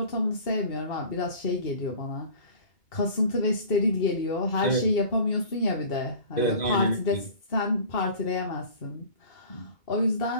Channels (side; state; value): right; late; 2.2 ms